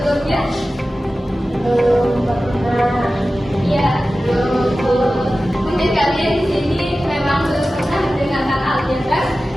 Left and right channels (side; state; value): both; normal; correlation 0.95